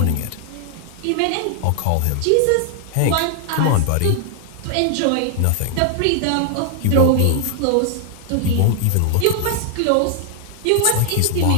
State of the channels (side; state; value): both; different; correlation 0.00